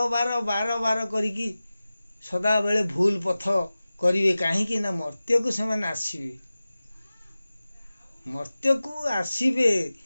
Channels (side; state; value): both; inverted; correlation -0.96